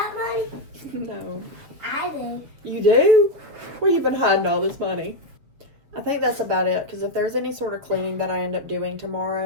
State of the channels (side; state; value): left; late; 6.7 ms